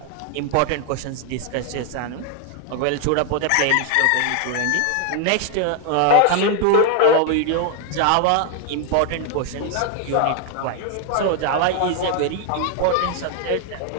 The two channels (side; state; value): both; different; correlation 0.00